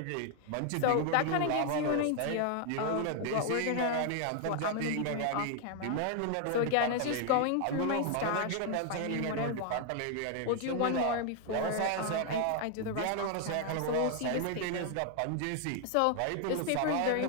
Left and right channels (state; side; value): different; both; correlation 0.00